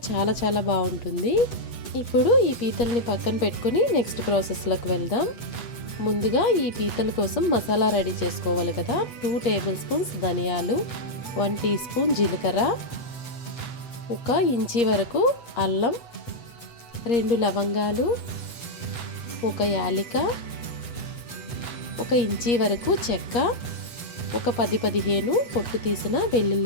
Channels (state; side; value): late; right; 8.1 ms